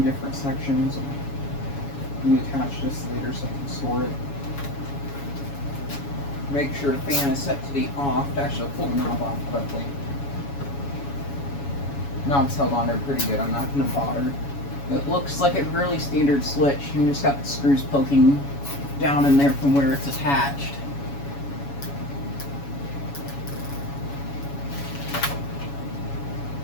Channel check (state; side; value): late; right; 7.1 ms